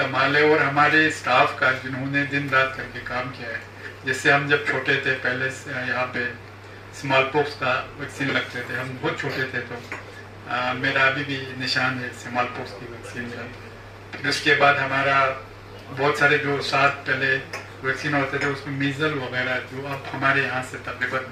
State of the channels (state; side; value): identical; both; correlation 1.00